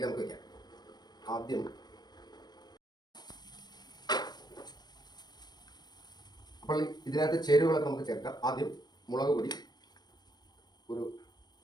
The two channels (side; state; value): right; late; 0.20 ms